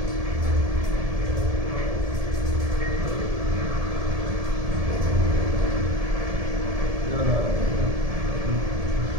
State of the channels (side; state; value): left; late; 1.7 ms